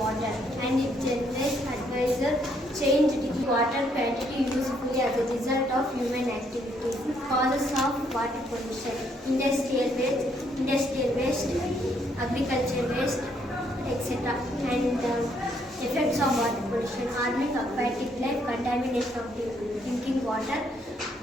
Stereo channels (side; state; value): both; normal; correlation 0.71